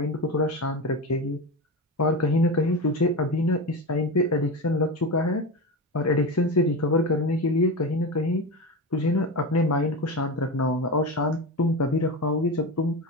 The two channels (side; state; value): both; normal; correlation 0.21